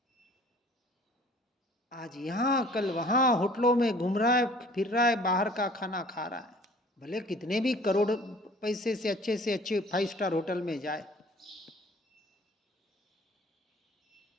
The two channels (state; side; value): normal; both; correlation 0.51